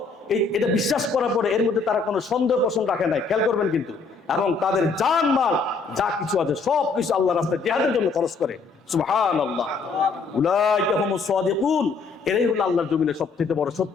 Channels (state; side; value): quieter; right; 4.5 dB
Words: এটা বিশ্বাস করার পরে এর মধ্যে তারা কোনো সন্দেহ পোষণ রাখে নাই, খেয়াল করবেন কিন্তু, এবং তাদের জান মাল যা কিছু আছে সব কিছু আল্লাহর রাস্তায় জিহাদের জন্য খরচ করে। সুবহানাল্লাহ। উলাইকা হুমুস সাদিকুন, এরাই হলো আল্লাহর জমিনে সবচেয়ে বড়